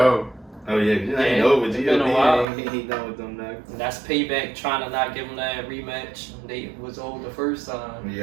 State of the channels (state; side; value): drops out; left; at 2.5 s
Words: Oh yeah, you ain't over. It's been a while. He ain't done with them nuggets. And that's payback trying to not give them that rematch. They was old the first time.